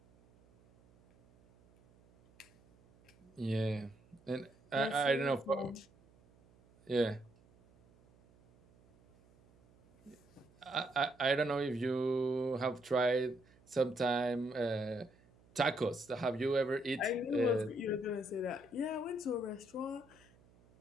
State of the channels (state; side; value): noise; right; hum, 29 dB below the sound